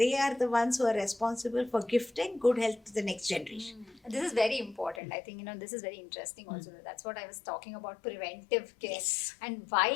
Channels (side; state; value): right; drops out; at 5.0 s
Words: are the ones who are responsible for gifting good health to the next generation. This is very important. I think, this is very interesting also. That's what I was talking about, preventive care. Yes. And why